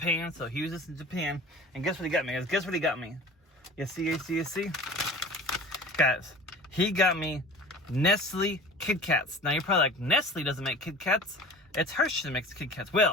So he was just in Japan, and guess what he got me, guys? Guess what he got me? You see? Guys, he got me Nestle Kit Kats. Now you're probably like, Nestle doesn't make Kit Kats. It's Hershey that makes Kit Kats.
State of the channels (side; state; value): both; normal; correlation 0.39